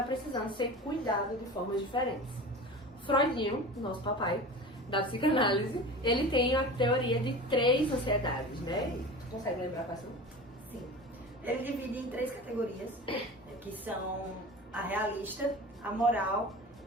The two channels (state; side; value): normal; both; correlation 0.34